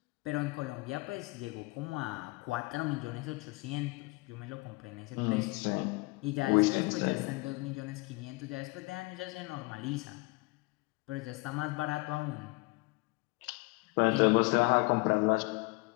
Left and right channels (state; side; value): quieter; right; 25.6 dB